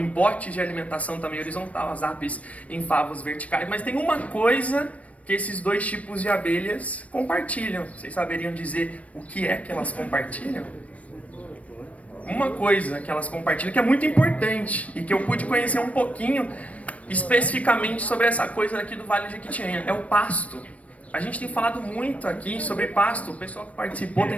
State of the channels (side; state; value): right; late; 0.066 ms